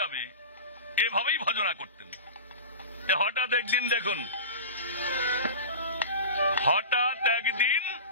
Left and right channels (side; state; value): both; inverted; correlation -0.31